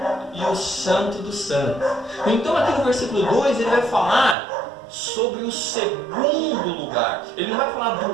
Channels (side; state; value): left; drops out; at 4.4 s